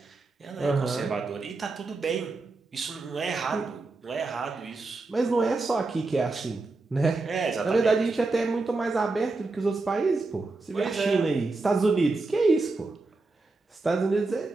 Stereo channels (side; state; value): left; quieter; 3.5 dB